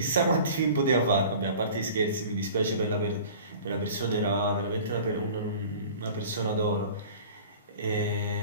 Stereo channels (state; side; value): inverted; both; correlation -0.43